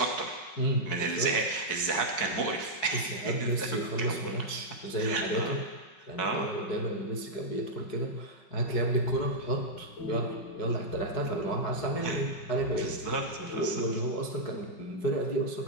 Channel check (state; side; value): late; right; 5.4 ms